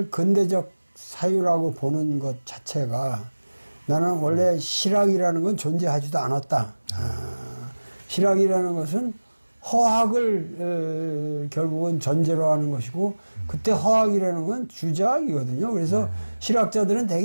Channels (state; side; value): inverted; both; correlation -1.00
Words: 근대적 사유라고 보는 것 자체가 나는 원래 실학이라는 건 존재하지도 않았다. 실학이라는 것은 허학을 결국은 전제로 하는 것이고 그때 허학이라는 건 주자학이거든요. 그래서 실학자들은